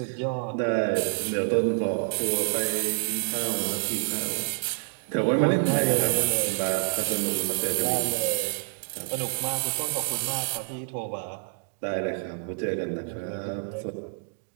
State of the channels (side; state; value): left; silent; digital silence